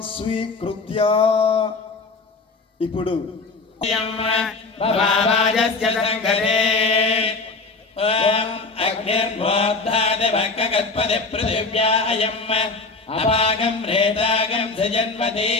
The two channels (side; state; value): right; quieter; 3.8 dB